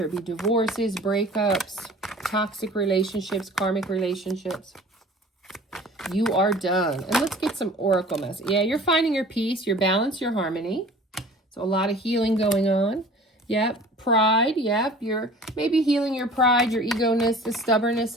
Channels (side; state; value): both; normal; correlation 0.45